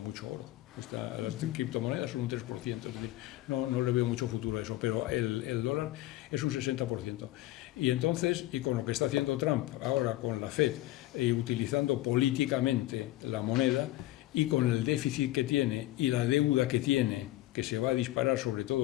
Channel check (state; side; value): quieter; right; 16.1 dB